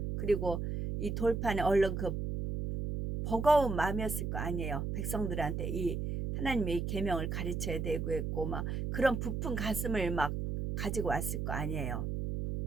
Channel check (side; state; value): right; noise; hum, 2 dB below the sound